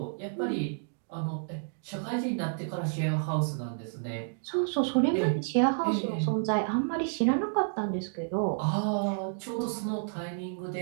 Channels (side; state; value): left; silent; digital silence